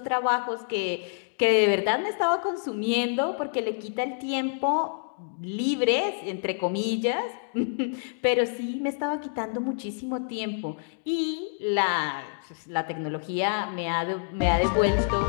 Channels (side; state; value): right; silent; digital silence